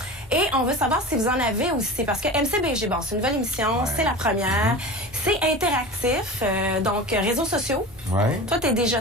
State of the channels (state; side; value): normal; both; correlation 0.32